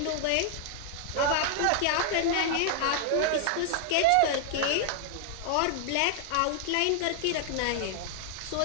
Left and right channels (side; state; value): both; different; correlation 0.00